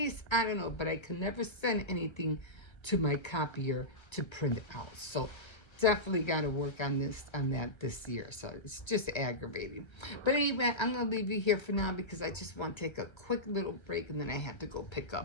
I don't know, but I can never send anything to my copier to print it out. So definitely got to work on that this year. So it's just aggravating. But anyway, I'm gonna leave you here for now because I just want to take a quick little break and then I have to go pick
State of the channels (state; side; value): late; right; 1.3 ms